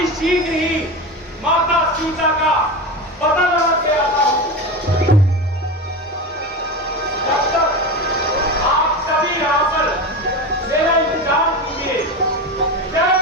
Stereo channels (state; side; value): normal; both; correlation 0.22